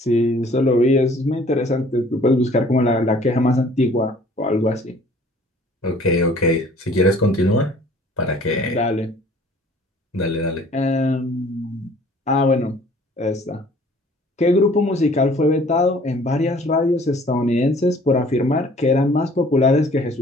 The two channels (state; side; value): normal; both; correlation 0.54